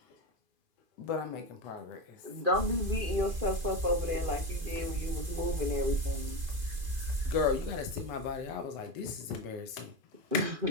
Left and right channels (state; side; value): late; left; 2.5 ms